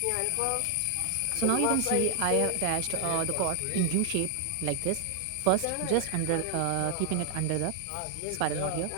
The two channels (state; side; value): different; both; correlation 0.00